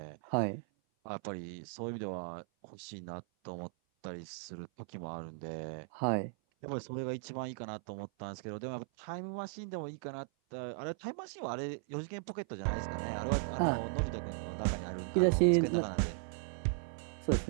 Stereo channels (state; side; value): silent; left; 53 dB below the other